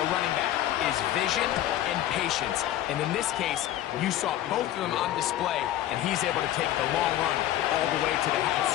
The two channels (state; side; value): quieter; right; 13.0 dB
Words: running back is vision and patience. And in this case, you saw both of them on display, and he's able to take the long run all the way to the